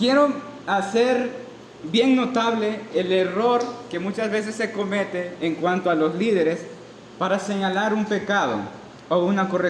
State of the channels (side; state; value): both; identical; correlation 1.00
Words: hacer bien notable el error que muchas veces se comete en cuanto a los líderes para señalar un pecado o una